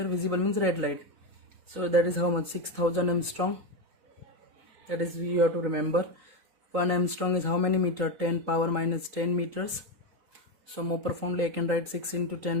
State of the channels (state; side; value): late; left; 3.9 ms